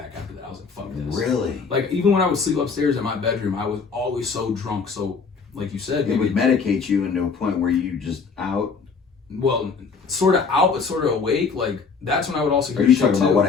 after that. I was like, fuck this. Really? Like, even when I would sleep upstairs in my bedroom, I was always so drunk. So, like you said, it would medicate you into a point where you just out. Well, sort of out, but sort of awake. Like, that's when I would also hear. Are you talking about what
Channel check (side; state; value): right; quieter; 5.2 dB